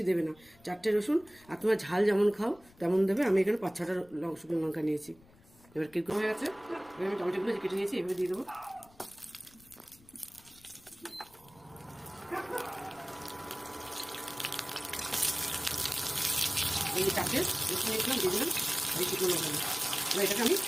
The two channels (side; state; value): left; noise; rumble, 27 dB below the sound